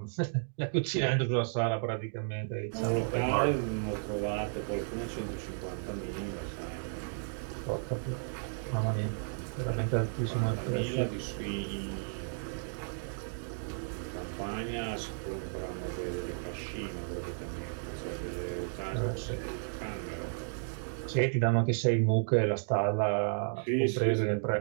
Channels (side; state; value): left; silent; digital silence